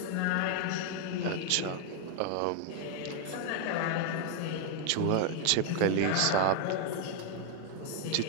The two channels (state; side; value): different; both; correlation 0.00